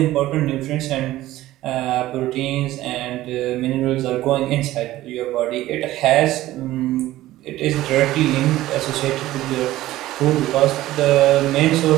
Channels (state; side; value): quieter; left; 15.7 dB